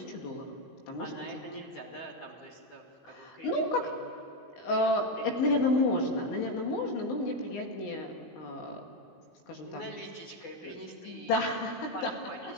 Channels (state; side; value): late; right; 16 ms